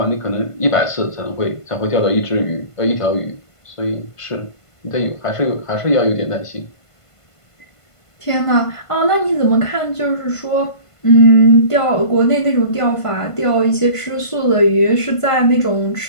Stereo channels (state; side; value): late; right; 1.5 ms